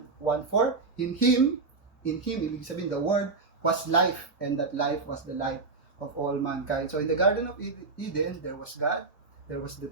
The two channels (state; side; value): quieter; left; 4.1 dB